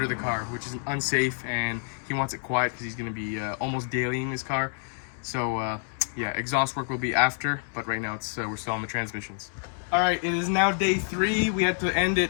the car, which is unsafe, and he wants it quiet because he's going to be almost daily in this car. So yeah, exhaust work will be after, but right now we're still on the transmissions. All right, it is now day 3. We had to end it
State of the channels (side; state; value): right; silent; 60 dB below the other